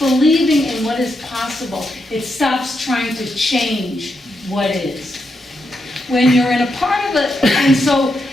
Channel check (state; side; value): normal; both; correlation 0.83